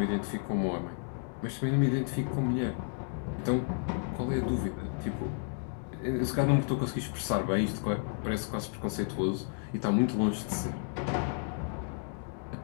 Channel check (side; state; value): right; silent; 55 dB below the other